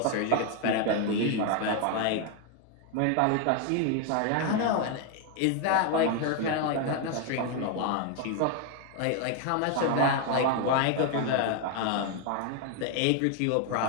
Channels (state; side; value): different; both; correlation 0.01